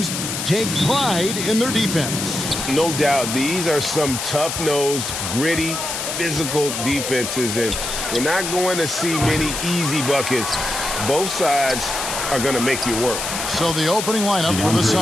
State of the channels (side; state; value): left; noise; hiss, 4 dB below the sound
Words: take pride in their defense. No doubt, these are some tough-nosed, gritty, physical defenses, and we're not going to see many easy buckets. Both sides are going to make you work. So the opening lineup for the